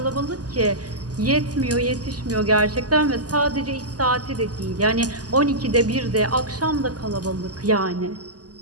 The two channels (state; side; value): late; left; 0.68 ms